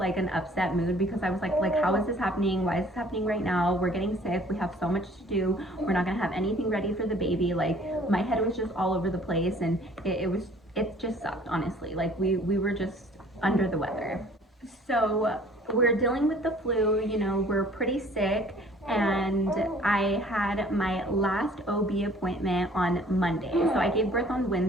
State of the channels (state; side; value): normal; both; correlation 0.54